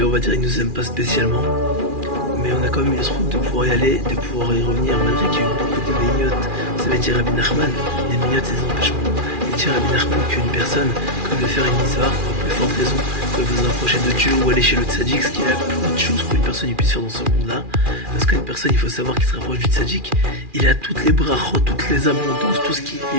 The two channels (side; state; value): left; late; 2.4 ms